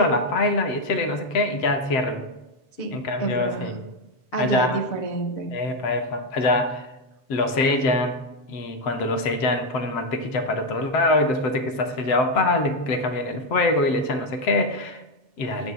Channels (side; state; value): right; late; 7.7 ms